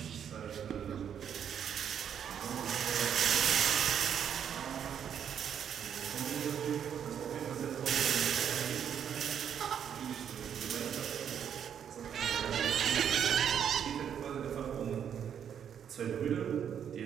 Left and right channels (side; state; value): left; quieter; 8.6 dB